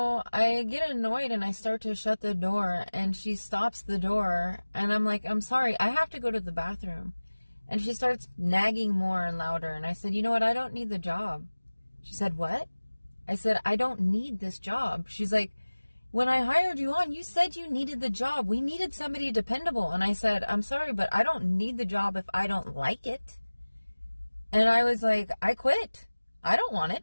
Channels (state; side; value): inverted; both; correlation -1.00